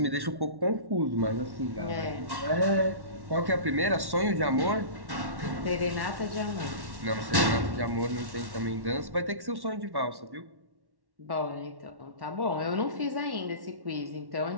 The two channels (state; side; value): late; left; 1.1 ms